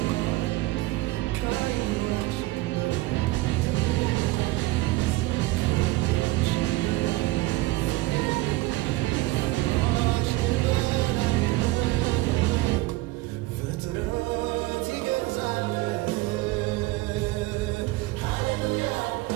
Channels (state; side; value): quieter; left; 19.6 dB